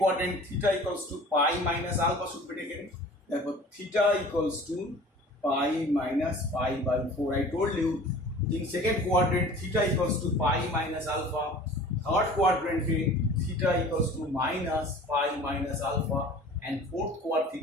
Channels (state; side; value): normal; both; correlation 0.44